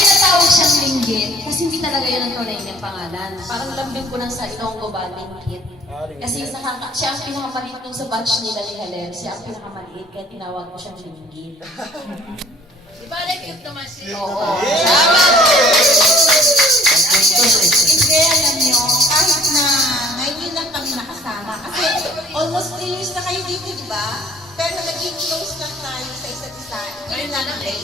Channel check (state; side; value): normal; both; correlation 0.53